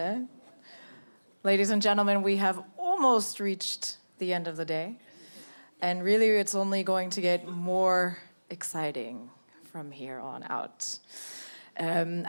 Ladies and gentlemen, we have almost reached the end of the day. And really, it's only going to get more exciting from here on out.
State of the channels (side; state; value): both; inverted; correlation -1.00